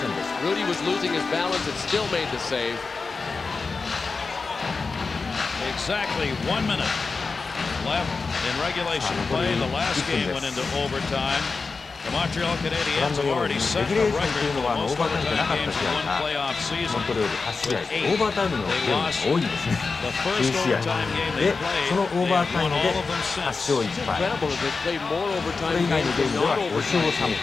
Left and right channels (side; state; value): right; quieter; 4.4 dB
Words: Rudy was losing his balance and still made the save. Exactly 1 minute left in regulation play. The last game went into overtime. The Montreal Canadiens have already set a record for the most overtime games in one playoff season with 8. They lost the first overtime game they played. They won all of them since. It's incredible that they played more overtime games than non-overtime games.